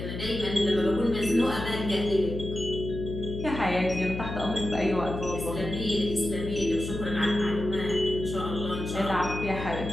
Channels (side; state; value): left; noise; hum, 6 dB below the sound